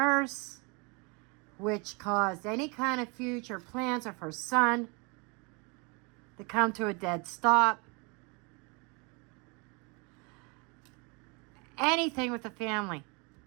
which caused any kind of future plans of her son to come to a dead stop. Anything with the family.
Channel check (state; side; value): quieter; left; 31.1 dB